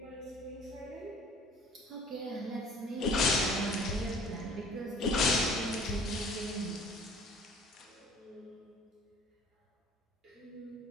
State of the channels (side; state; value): both; normal; correlation 0.51